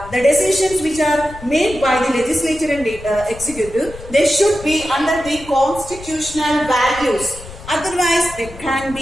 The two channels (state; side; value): noise; left; rumble, 16 dB below the sound